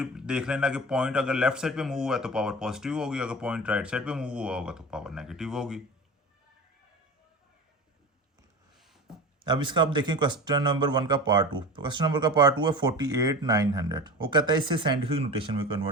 देख लेना कि पॉइंट अगर लेफ्ट साइड पे मूव हुआ है तो पावर पॉजिटिव होगी, अगर पॉइंट राइट साइड पे मूव हुआ होगा तो पावर नेगेटिव होगी। अब इसका आप देखें क्वेश्चन नंबर 1 का पार्ट 2। क्वेश्चन नंबर का पार्ट 2 है 48,900। वो कहता है इसे साइंटिफिक नोटेशन में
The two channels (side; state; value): both; normal; correlation 0.32